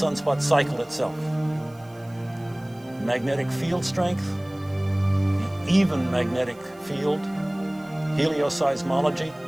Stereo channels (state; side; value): noise; right; hiss, 29 dB below the sound